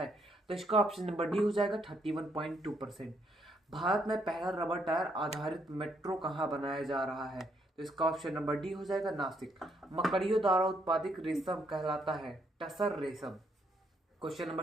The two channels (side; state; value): both; normal; correlation 0.73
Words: तो इसका ऑप्शन नंबर डी हो जाएगा 31.2%। भारत में पहला रबर टायर आधारित मेट्रो कहाँ बनाया जा रहा है, तो इसका ऑप्शन नंबर डी हो जाएगा नासिक। मकड़ियों द्वारा उत्पादित रेशम कहलाता है टसर रेशम। क्वेश्चन